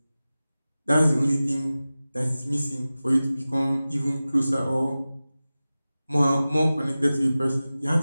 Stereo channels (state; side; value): inverted; both; correlation -0.96